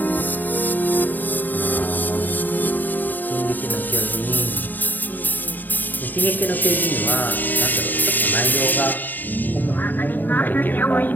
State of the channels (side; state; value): right; late; 0.088 ms